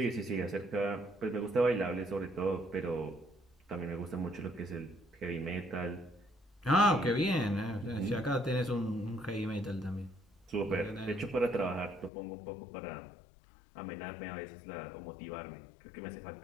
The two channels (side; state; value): right; drops out; at 12.1 s